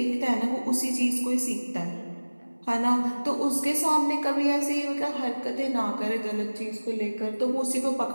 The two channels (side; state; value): both; inverted; correlation -1.00